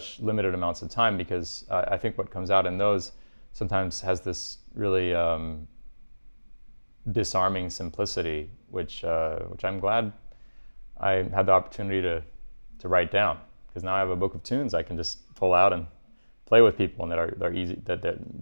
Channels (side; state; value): both; inverted; correlation -1.00